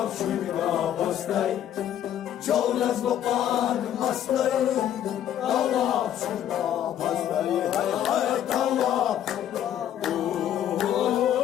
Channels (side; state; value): right; quieter; 10.7 dB